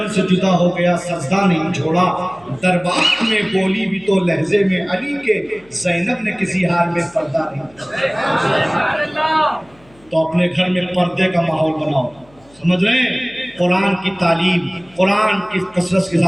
سے جدا ہو گیا، سجدہ نہیں چھوڑا، دربار میں بولی بھی تو لہجے میں علی کے، زینب نے کسی حال میں پردہ نہیں چھوڑا۔ تو اپنے گھر میں پردے کا ماحول بناؤ، سمجھ رہے ہیں؟ قرآن کی تعلیم، قرآن کی کثرت کے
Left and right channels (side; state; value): left; noise; hum, 29 dB below the sound